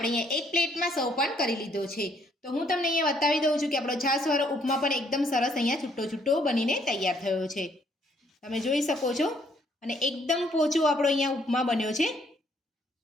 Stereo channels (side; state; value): both; normal; correlation 0.67